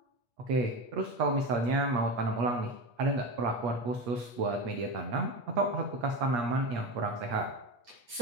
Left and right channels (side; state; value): left; late; 8.4 ms